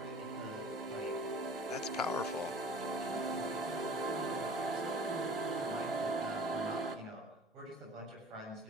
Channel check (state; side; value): normal; both; correlation 0.45